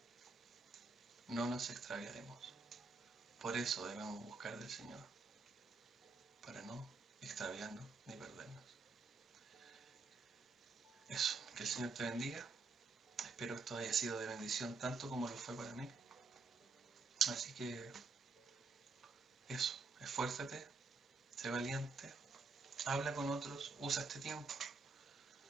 no nos extraviaremos. Por eso debemos buscar del Señor, para no extraviarnos ni perdernos. Eso, que el Señor te bendiga. Espero esto haya sido de bendición tanto como lo fue para mí. Así que eso, esfuérzate, sé valiente, habla con otros, usa este tiempo.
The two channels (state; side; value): quieter; left; 4.2 dB